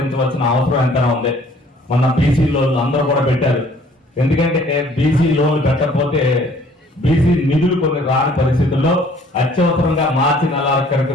అవసరం ఎంతైనా ఉంది. మొన్న బీసీ లోన్లు అందరూ కూడా పెట్టారు. ఎందుకంటే బీసీ లోన్లు పెట్టకపోతే బీసీ నిధులు కొన్ని రాని పరిస్థితుల్లో అత్యవసరంగా మార్చి 4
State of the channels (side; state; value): both; normal; correlation 0.57